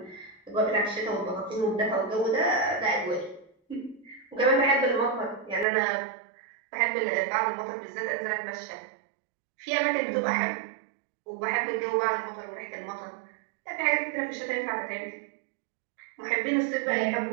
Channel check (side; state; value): left; drops out; at 5.7 s